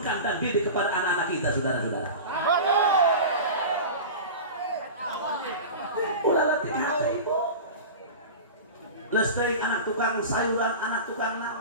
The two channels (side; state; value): both; inverted; correlation -0.30